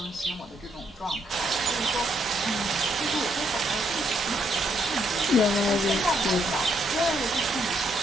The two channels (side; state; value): both; normal; correlation 0.73